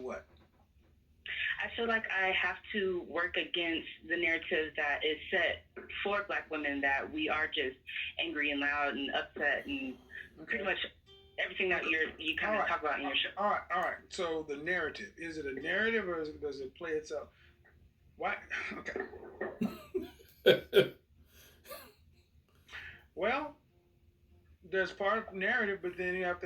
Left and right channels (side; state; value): both; identical; correlation 1.00